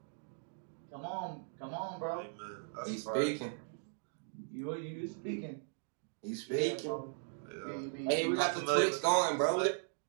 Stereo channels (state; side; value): silent; left; digital silence